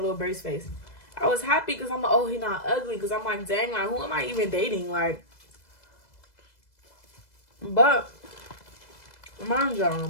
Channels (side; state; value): right; late; 2.0 ms